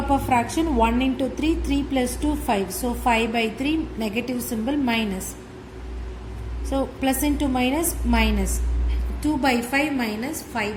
fraction, 1 into 3, 3 plus 2, 5. So 5 by 3, negative symbol, minus. So plus into minus, minus. 2 by 5 minus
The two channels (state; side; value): identical; both; correlation 1.00